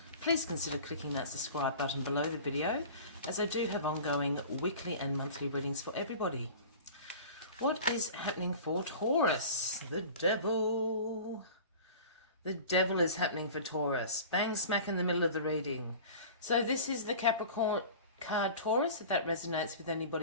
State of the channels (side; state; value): both; inverted; correlation -0.39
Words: Please consider clicking that subscribe button below the video, as I do have ongoing weekly and monthly readings for everybody. What is happening for Taurus? The Devil. The Devil is happening for Taurus. Bang smack in the middle of the reading. So this is the Capricorn card, Taurus, if that resonates with